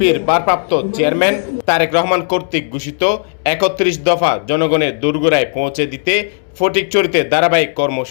ভারপ্রাপ্ত চেয়ারম্যান তারেক রহমান কর্তৃক ঘোষিত ৩১ দফা জনগণের দোরগোড়ায় পৌঁছে দিতে ফটিকছড়িতে ধারাবাহিক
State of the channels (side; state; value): right; silent; digital silence